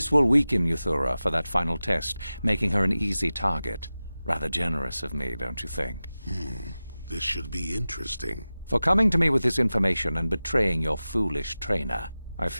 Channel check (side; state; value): both; inverted; correlation -0.95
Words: will weaken Euthura for that final test, making her an easy target. Rather generous of me, don't you think? This should be interesting. For coming to me with this information and betraying your foolish trainer, I